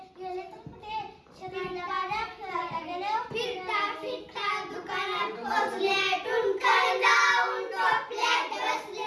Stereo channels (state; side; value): identical; both; correlation 1.00